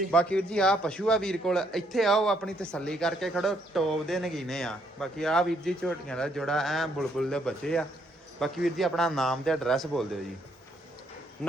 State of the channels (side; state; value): both; normal; correlation 0.71